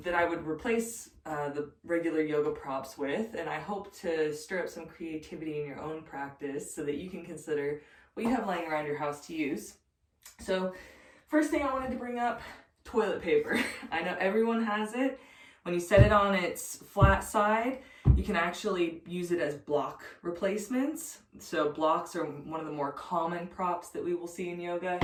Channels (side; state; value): both; identical; correlation 1.00